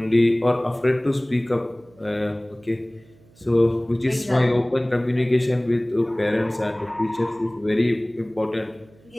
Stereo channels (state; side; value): noise; right; hum, 28 dB below the sound